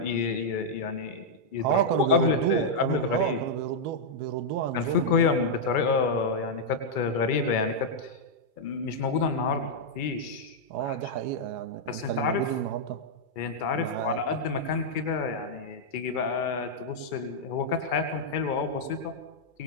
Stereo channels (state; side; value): late; right; 2.3 ms